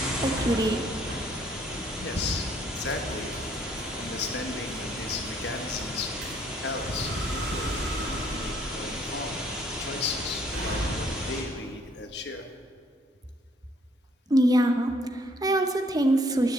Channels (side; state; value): both; normal; correlation 0.64